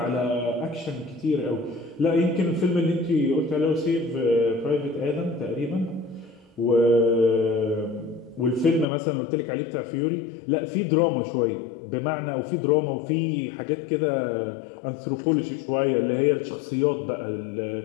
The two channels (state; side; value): drops out; right; at 8.8 s